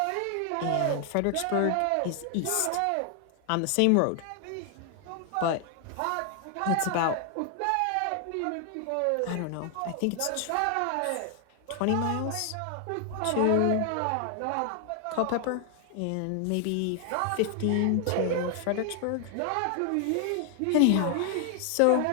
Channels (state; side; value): different; both; correlation 0.00